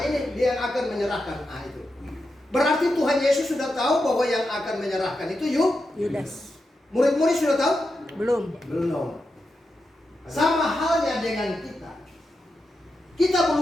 ini dia yang akan menyerahkan. Nah itu. Berarti Tuhan Yesus sudah tahu bahwa yang akan menyerahkan itu Yudas. Murid-murid sudah tahu? Belum. Belum. Sama halnya dengan kita. Kita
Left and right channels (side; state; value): both; normal; correlation 0.88